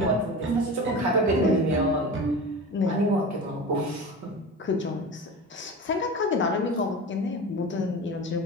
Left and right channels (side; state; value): both; normal; correlation 0.31